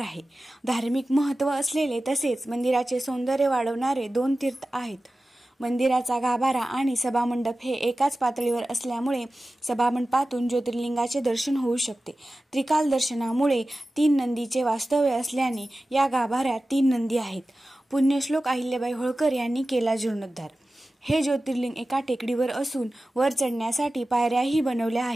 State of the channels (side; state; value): both; normal; correlation 0.95